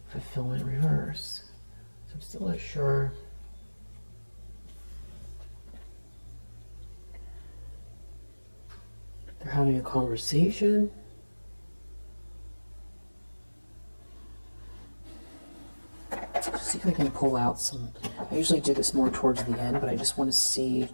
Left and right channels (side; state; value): both; inverted; correlation -1.00